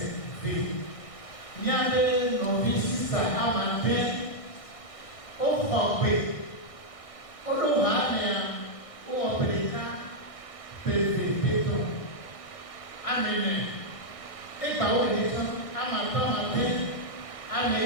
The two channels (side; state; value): right; late; 1.6 ms